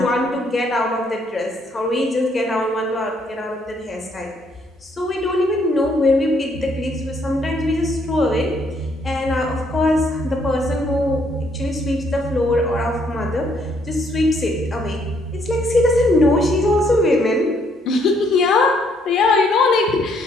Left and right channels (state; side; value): normal; both; correlation 0.69